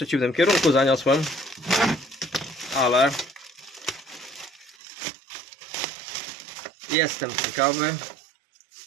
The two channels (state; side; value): drops out; left; at 4.8 s